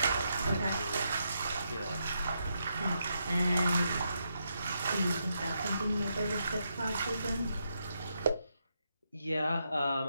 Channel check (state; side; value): inverted; both; correlation -0.81